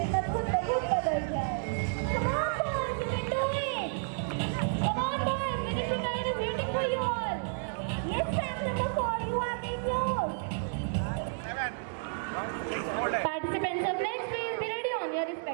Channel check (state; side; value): silent; left; digital silence